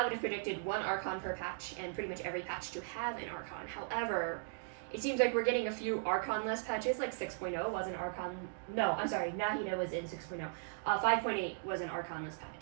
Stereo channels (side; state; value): left; silent; digital silence